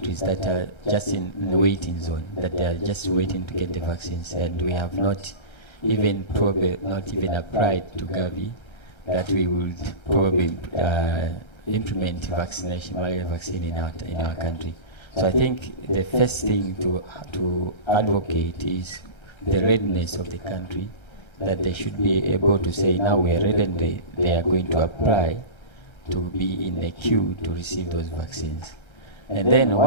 that are just in the waiting zone, that they are just waiting to get the vaccines, and we have not even applied to Gavi that we would probably implement malaria vaccine in our country. So I think the first thing to advocate is the readiness of the country, that they should be able to say, now we are ready, and they are going to apply to be in the queue to receive those vaccines. And then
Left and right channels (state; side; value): late; right; 1.3 ms